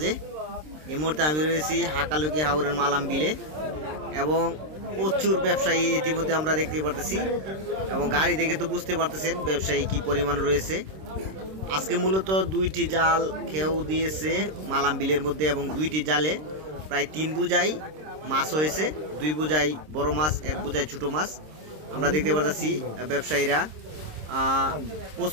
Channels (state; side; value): late; left; 26 ms